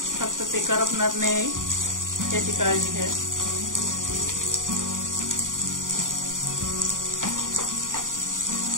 फक्त ते करपणार नाही याची काळजी घ्या।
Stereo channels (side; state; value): left; late; 0.88 ms